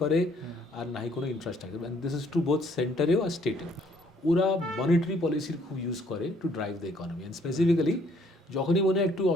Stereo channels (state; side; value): normal; both; correlation 0.63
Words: করে আর নাই কোনো infrastructure, and this is to both সেন্টারেও আর স্টেটেও। ওরা মনিটারি পলিসির খুব ইউজ করে to drive the economy, and specifically যখনই মনে হয় একটু